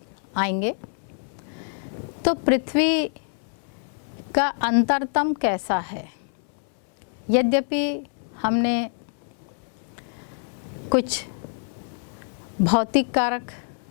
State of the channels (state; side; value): silent; right; 58 dB below the other